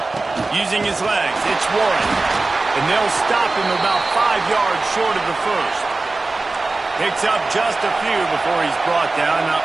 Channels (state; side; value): quieter; left; 3.4 dB